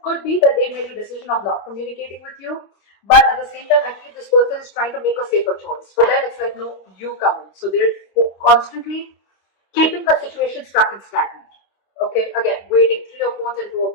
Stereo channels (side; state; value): right; late; 25 ms